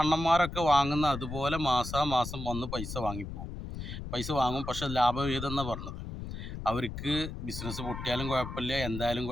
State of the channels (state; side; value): noise; left; rumble, 8 dB below the sound